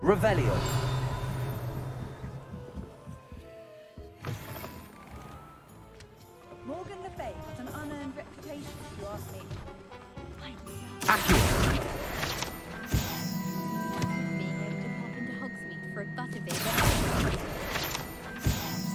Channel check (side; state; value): both; identical; correlation 1.00